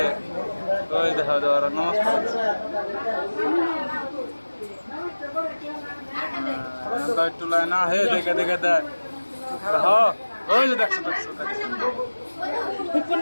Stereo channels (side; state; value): both; inverted; correlation -1.00